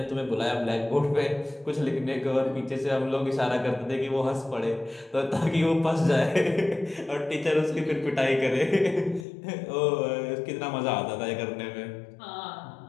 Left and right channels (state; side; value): drops out; right; at 9.2 s